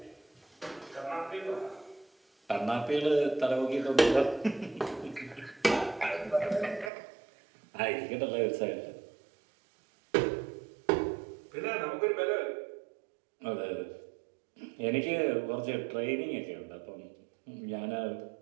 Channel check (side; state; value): left; drops out; at 6.9 s